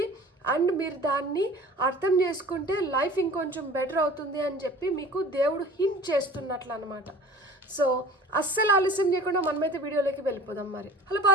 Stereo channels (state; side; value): normal; both; correlation 0.44